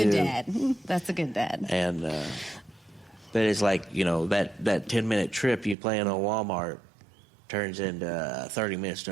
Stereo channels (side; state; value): left; drops out; at 5.8 s